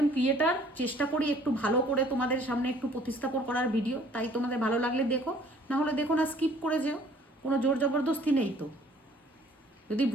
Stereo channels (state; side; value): normal; both; correlation 0.56